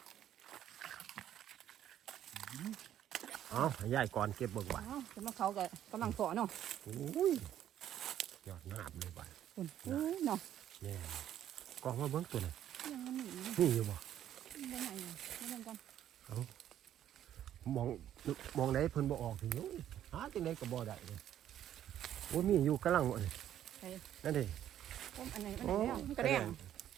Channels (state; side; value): quieter; left; 11.1 dB